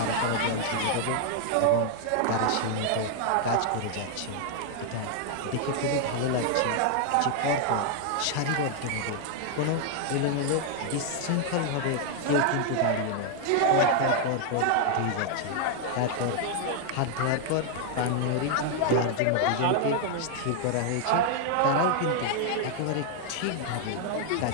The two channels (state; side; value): different; both; correlation 0.00